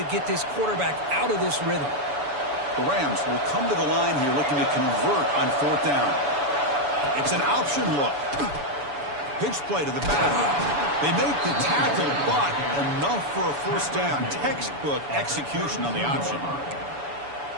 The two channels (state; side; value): late; left; 7.0 ms